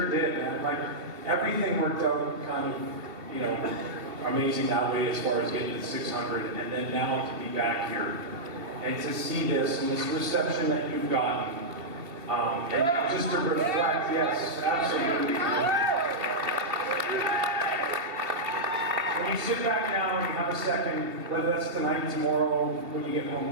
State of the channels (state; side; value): late; left; 2.7 ms